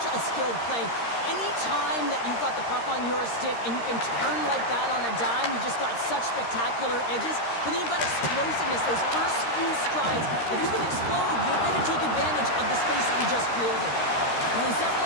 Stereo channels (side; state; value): right; late; 13 ms